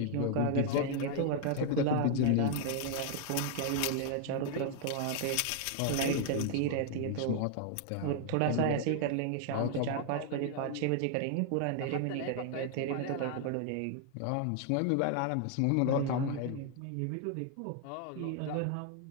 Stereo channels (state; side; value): different; both; correlation 0.00